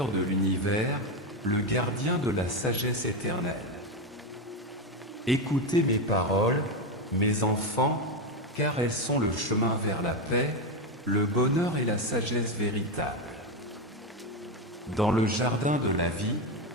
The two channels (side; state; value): both; normal; correlation 0.11